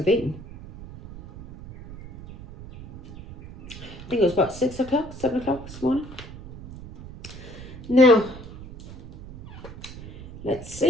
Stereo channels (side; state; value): right; noise; rumble, 15 dB below the sound